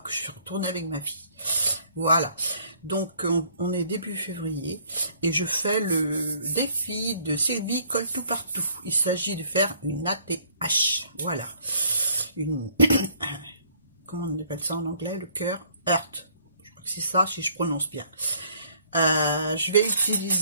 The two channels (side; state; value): both; inverted; correlation -0.61